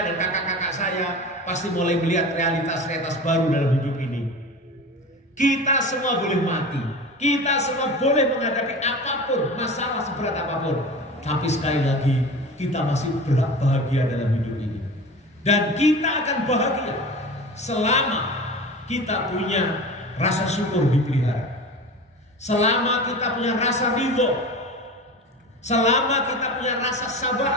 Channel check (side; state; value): both; normal; correlation 0.33